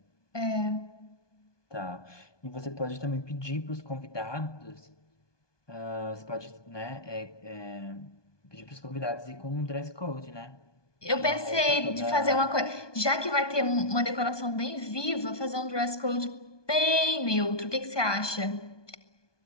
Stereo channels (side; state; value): right; late; 1.2 ms